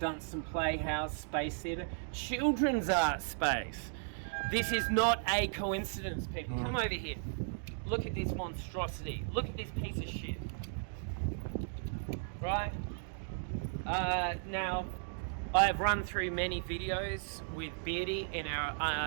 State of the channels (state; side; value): silent; left; digital silence